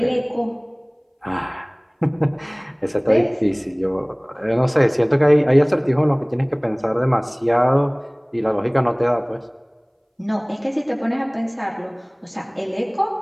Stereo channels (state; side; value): identical; both; correlation 1.00